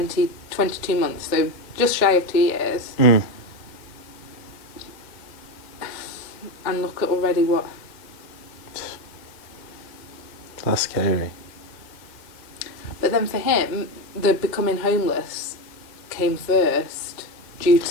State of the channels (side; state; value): right; late; 2.1 ms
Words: months, so just shy of 2 years. Mm. And look at already what... That's scary. But then for him, the becoming homeless came first due